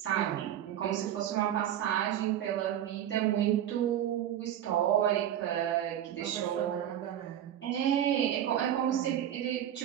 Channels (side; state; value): left; quieter; 10.9 dB